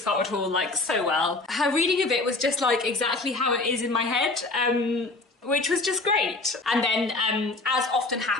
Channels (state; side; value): quieter; right; 3.2 dB